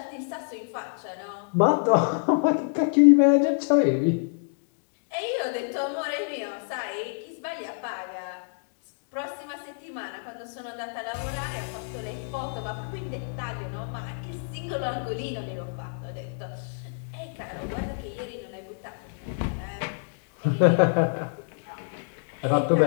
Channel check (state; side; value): silent; right; digital silence